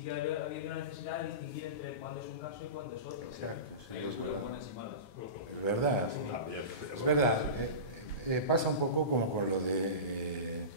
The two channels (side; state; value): right; late; 9.5 ms